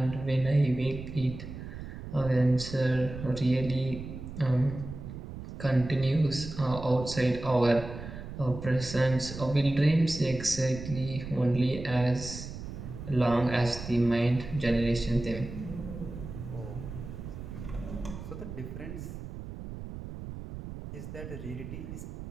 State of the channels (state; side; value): noise; right; rumble, 10 dB below the sound